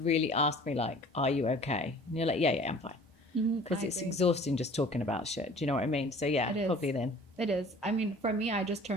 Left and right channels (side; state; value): both; normal; correlation 0.48